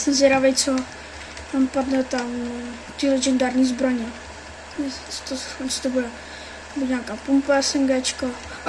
zvědavý, co tam padne tam ty legendární zbraně. Co to bude? Bude nějaká pumpa, SMGčko.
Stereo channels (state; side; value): identical; both; correlation 1.00